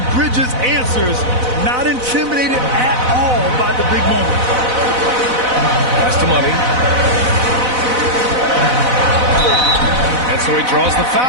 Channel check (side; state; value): left; late; 4.0 ms